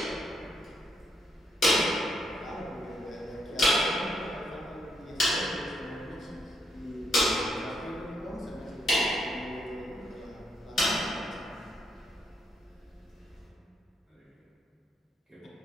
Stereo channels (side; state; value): both; normal; correlation 0.76